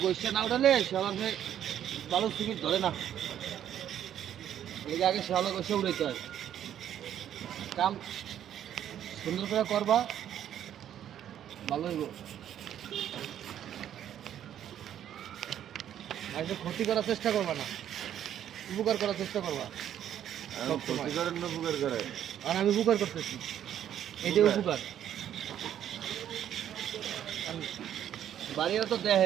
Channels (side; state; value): left; quieter; 10.4 dB